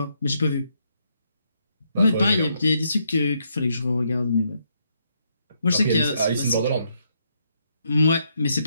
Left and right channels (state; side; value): inverted; both; correlation -0.76